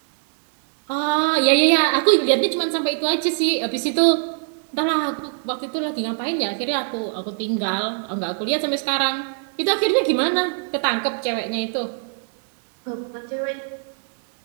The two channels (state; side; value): silent; left; 55 dB below the other